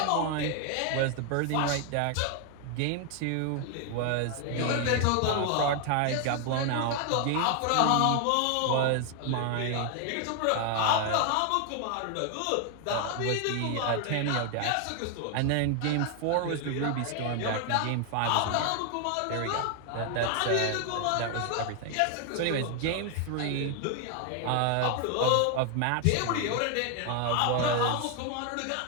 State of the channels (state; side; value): different; both; correlation 0.00